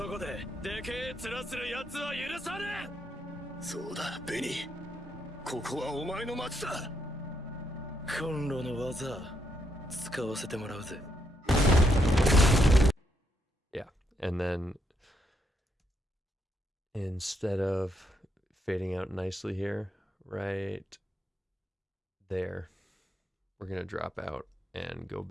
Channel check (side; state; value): both; normal; correlation 0.77